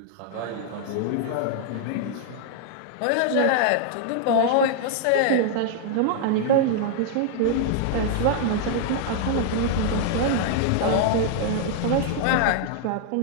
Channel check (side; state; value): both; different; correlation -0.01